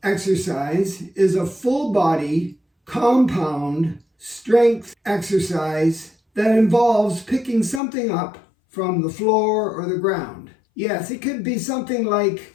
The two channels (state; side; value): drops out; right; at 7.8 s